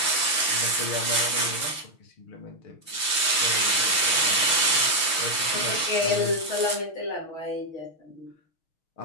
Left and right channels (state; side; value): late; right; 6.4 ms